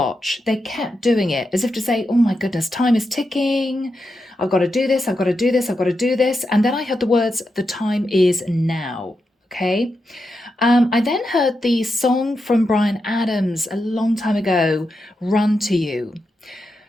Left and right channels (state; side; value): normal; both; correlation 0.87